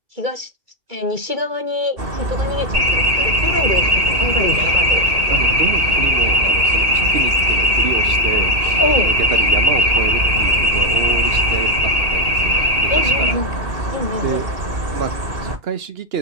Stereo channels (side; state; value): left; late; 2.6 ms